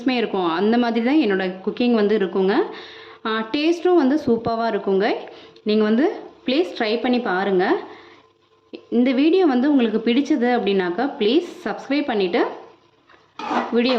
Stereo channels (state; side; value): identical; both; correlation 1.00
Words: இருக்கும். அந்த மாதிரி தான் என்னோடய குக்கிங் வந்து இருக்குங்க. டேஸ்ட்டும் வந்து சூப்பராக இருக்குங்க. நீங்கள் வந்து ப்ளீஸ் ட்ரை பண்ணி பாருங்கள். இந்த வீடியோ வந்து உங்களுக்கு பிடிச்சது அப்படின்னாக்கா ப்ளீஸ் சப்ஸ்கிரைப் பண்ணிவிட்டு வீடியோ